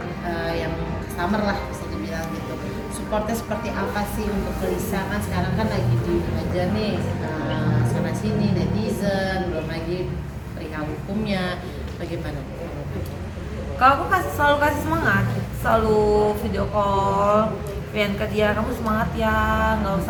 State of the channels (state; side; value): identical; both; correlation 1.00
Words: yang customer lah bisa dibilang gitu. Supportnya seperti apa sih untuk Lisa, kan sekarang kan lagi dihajar nih sana sini netizen, belum lagi perihal hukumnya, bagaimana? Kalau aku selalu kasih semangat, selalu video call, pengen ke dia, kamu semangat ya, nggak